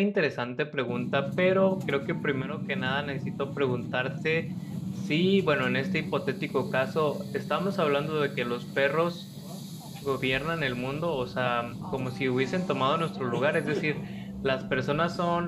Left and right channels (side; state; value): both; identical; correlation 1.00